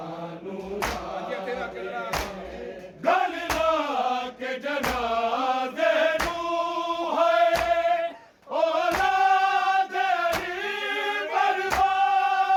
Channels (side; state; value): both; identical; correlation 1.00